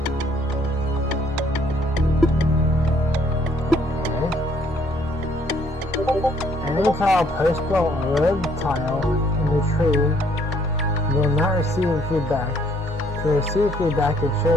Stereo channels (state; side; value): normal; both; correlation 0.65